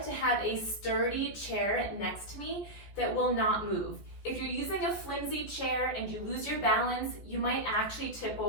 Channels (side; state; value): right; late; 14 ms